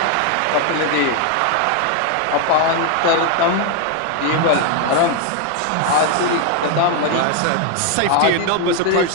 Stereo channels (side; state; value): both; different; correlation 0.01